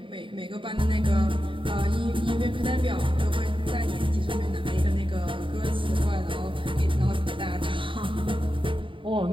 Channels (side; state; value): left; late; 0.25 ms